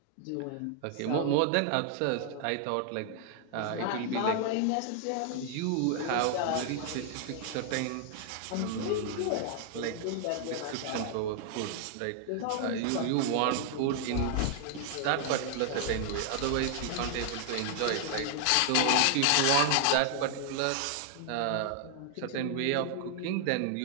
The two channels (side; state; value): both; different; correlation 0.00